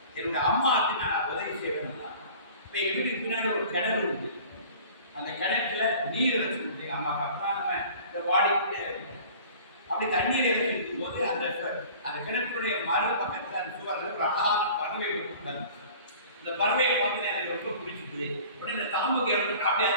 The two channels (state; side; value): inverted; both; correlation -0.45